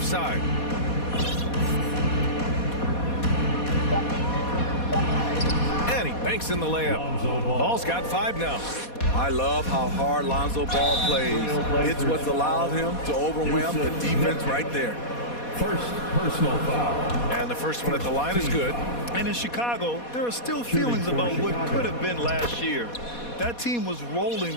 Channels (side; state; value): right; late; 4.2 ms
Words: side. And he banks in the layup. Ball's got 5 now. I love how hard Lonzo Ball plays. It's what's allowed him to overwhelm the defense right there. First personal foul. And the first one at the line is good. And in Chicago, there are still feelings about what could have been last year. That team was rolling